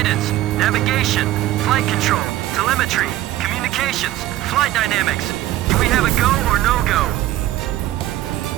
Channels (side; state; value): left; quieter; 14.7 dB